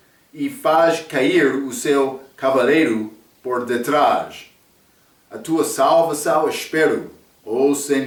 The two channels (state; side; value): identical; both; correlation 1.00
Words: e faz cair o seu cavaleiro por detrás. A tua salvação espero, ó